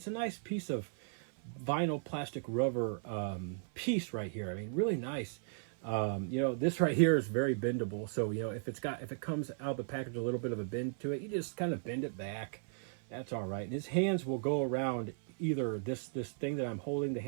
a nice piece of vinyl plastic rubber piece right here. I mean, really nice. You know, this right here is very bendable, so you know if it comes out of the package a little bit of a bend to it, you just kind of bend it back. That's all right. And his hands will go around either this thing that I'm holding, the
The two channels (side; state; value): left; silent; 54 dB below the other